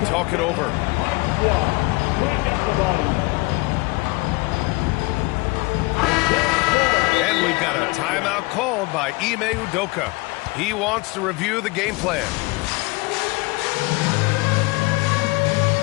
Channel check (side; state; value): right; quieter; 24.7 dB